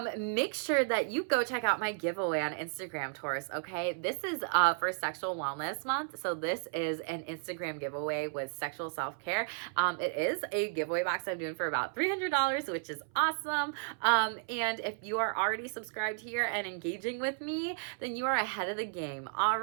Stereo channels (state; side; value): silent; left; 55 dB below the other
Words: make sure that you go check out my giveaway on Instagram, Taurus, okay? This is for Sexual Wellness Month. So this is an Instagram giveaway with sexual self-care. It is a giveaway box I'm doing for about $300, which is awesome. And if you are already subscribed here and engaging with me, then you are ahead of the game, all